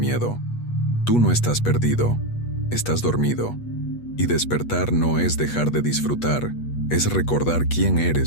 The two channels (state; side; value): late; right; 8.3 ms